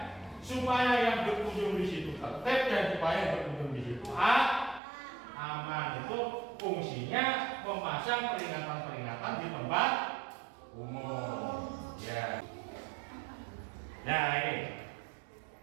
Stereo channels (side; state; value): left; drops out; at 4.8 s